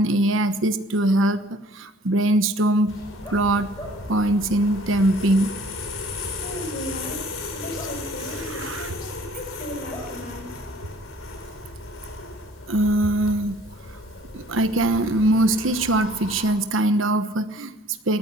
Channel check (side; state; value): both; normal; correlation 0.54